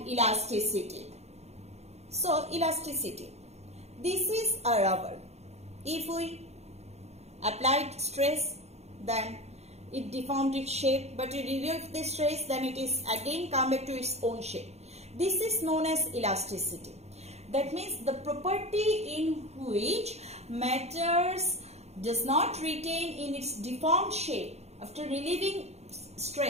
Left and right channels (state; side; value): late; left; 0.31 ms